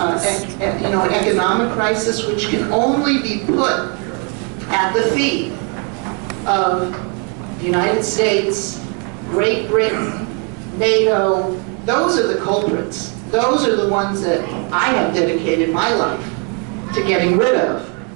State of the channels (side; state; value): left; quieter; 35.5 dB